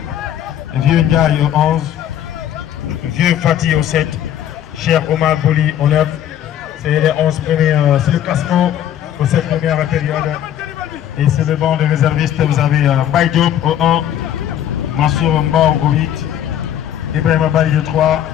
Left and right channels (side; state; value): right; quieter; 10.8 dB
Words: Vieux Ndiaye au 11, Vieux Fatih au 7, Cher Omar Bouli au 9. C'est les 11 premiers, c'est le classement pour cette première période. Et c'est le banc de réservistes. Vous avez Mbaye Diop au 1, Mansour Mbao au 8, Ibrahim Bali au 3,